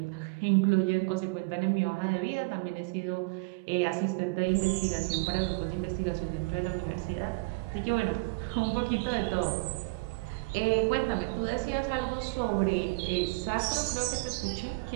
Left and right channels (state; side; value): quieter; left; 28.4 dB